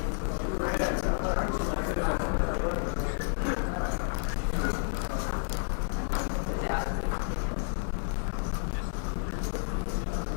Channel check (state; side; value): silent; right; digital silence